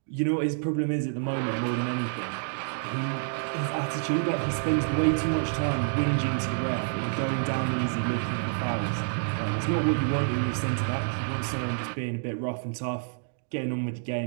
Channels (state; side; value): silent; left; digital silence